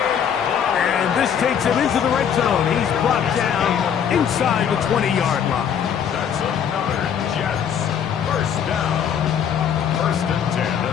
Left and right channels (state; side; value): quieter; right; 8.3 dB